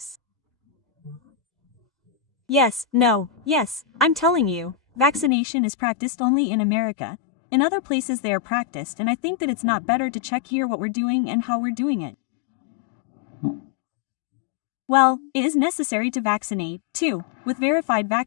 Yes, no, yes, I'm telling you, vaccination is practiced only in America. In other places they are practiced and I think that it's not better to check here what we're doing and how we're doing it. Well, it is necessary to vaccinate, too, with verified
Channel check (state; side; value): drops out; right; at 5.3 s